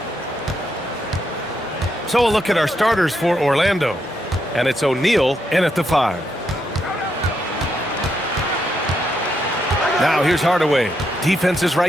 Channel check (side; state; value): both; normal; correlation 0.79